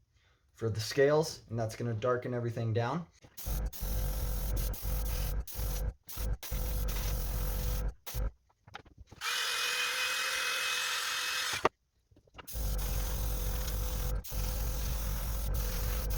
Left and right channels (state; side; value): identical; both; correlation 1.00